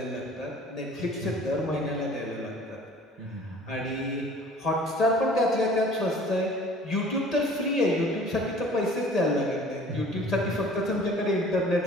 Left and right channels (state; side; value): normal; both; correlation 0.49